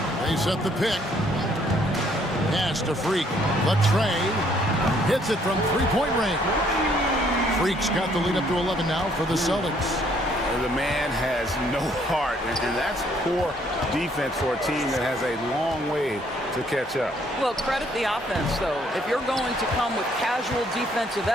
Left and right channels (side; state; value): both; normal; correlation 0.65